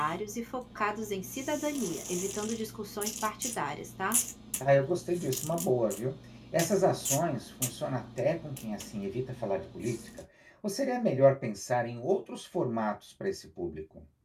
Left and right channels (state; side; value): identical; both; correlation 1.00